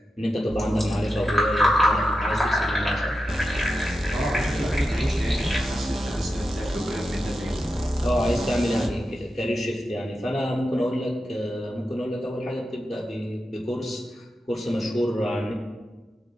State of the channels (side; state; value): both; normal; correlation 0.89